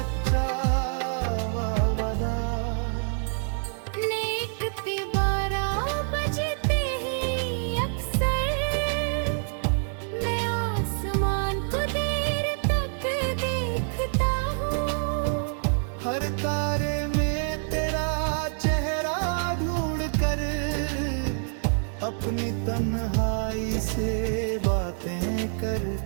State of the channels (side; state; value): left; silent; 60 dB below the other